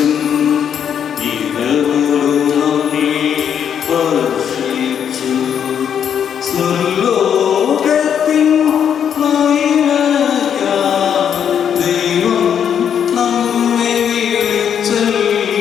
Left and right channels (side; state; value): right; quieter; 8.4 dB